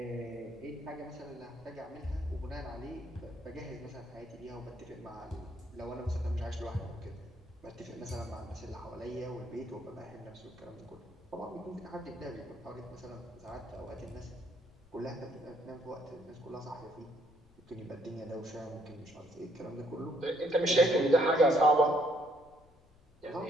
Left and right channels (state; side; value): noise; left; rumble, 28 dB below the sound